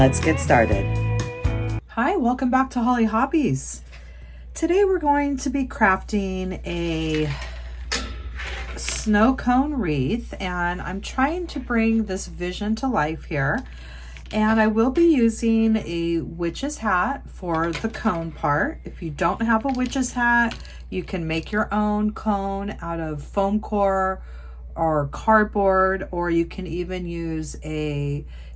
get started. Hi, welcome back to Hollie Hobbies. Today we're going to be crafting a snow cone wreath, and I'm trying to bring this vision to life here. And I will be using a witch's hat for the cone part. If you don't have a witch's hat, you can make your own cone out of foam core or cardboard, or you can even use a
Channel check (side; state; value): both; identical; correlation 1.00